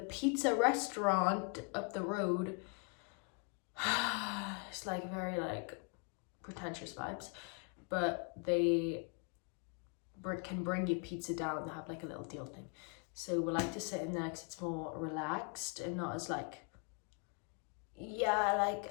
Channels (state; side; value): quieter; right; 36.1 dB